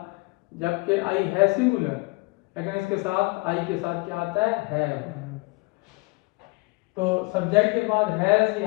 जबकि आई है सिंगुलर, लेकिन इसके साथ आई के साथ क्या आता है, हैव। तो सब्जेक्ट के बाद हैज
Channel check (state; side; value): quieter; right; 27.0 dB